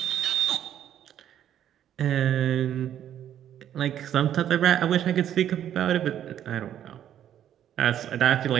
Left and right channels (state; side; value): quieter; left; 10.5 dB